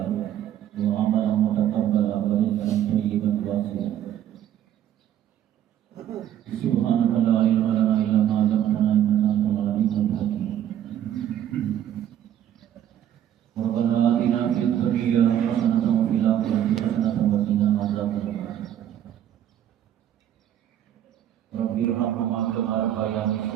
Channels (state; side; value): quieter; left; 10.8 dB